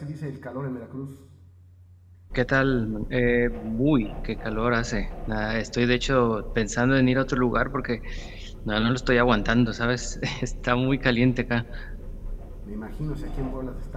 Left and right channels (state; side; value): identical; both; correlation 1.00